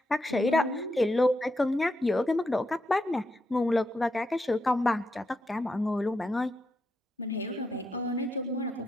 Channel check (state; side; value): normal; both; correlation 0.83